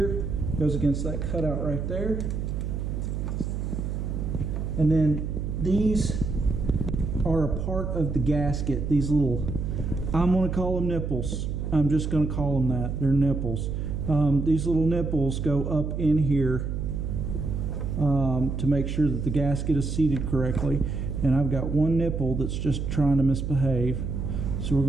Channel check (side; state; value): right; noise; hum, 3 dB below the sound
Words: goes against that cutout right there. And then these are a part of the gasket. These little, I'm going to call them nipples. I'm just going to call them that. They're nipples. These little nipples go up in here to make sure that the gasket is seated correctly. And I've got one nipple that's just trying to misbehave. So we're